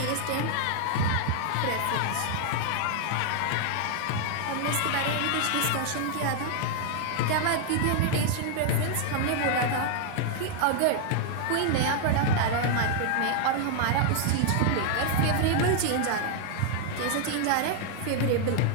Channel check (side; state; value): both; different; correlation 0.00